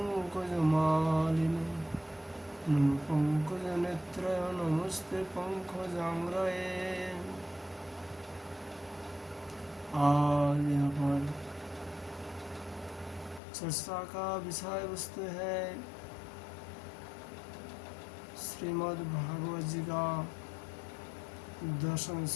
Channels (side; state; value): right; drops out; at 13.4 s